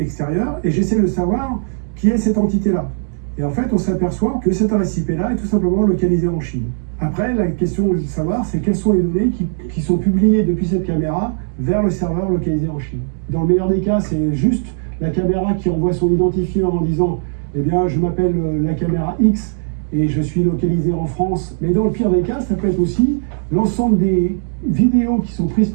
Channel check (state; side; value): silent; left; digital silence